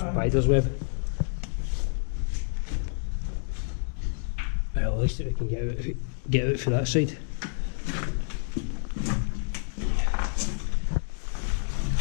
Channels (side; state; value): right; silent; digital silence